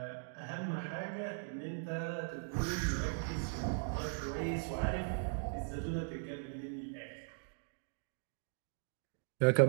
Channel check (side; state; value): left; silent; digital silence